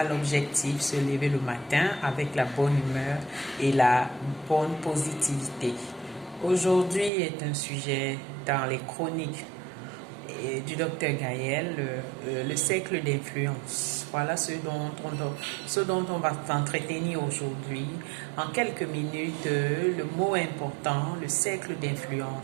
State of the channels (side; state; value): left; drops out; at 7.1 s